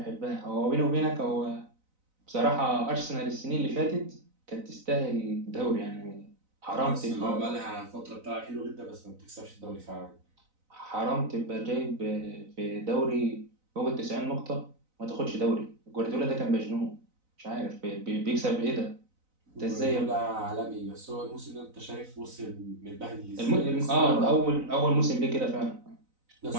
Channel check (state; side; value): late; left; 4.0 ms